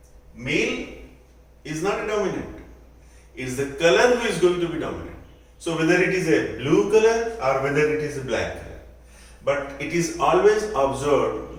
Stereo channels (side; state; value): both; identical; correlation 1.00